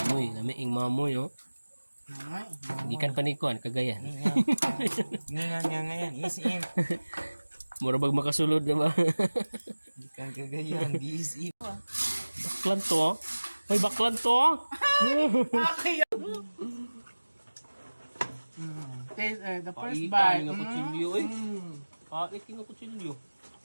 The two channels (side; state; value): both; inverted; correlation -1.00